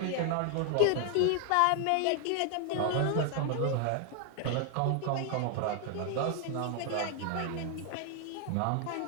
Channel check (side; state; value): both; different; correlation 0.00